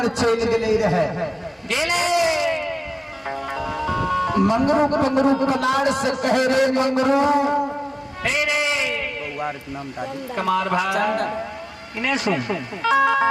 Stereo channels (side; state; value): both; identical; correlation 1.00